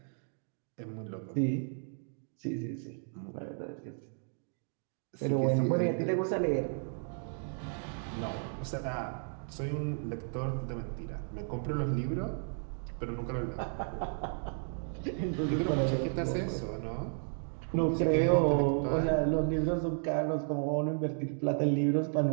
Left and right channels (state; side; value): silent; left; 55 dB below the other